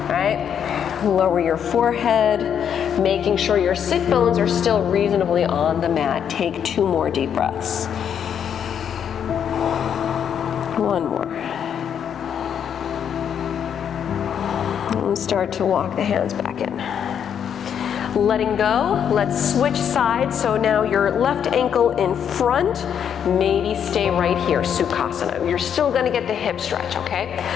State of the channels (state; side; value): quieter; right; 8.4 dB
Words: right? Lower your forehead, making sure your sit bones are still reasonably on the mat. Take 2 more deep breaths. 1 more. And start to walk the hands back in. Letting go, let's switch sides. So now your left ankle in front, maybe stay right here, Sukhasana. You're still gonna get the hip stretch, okay?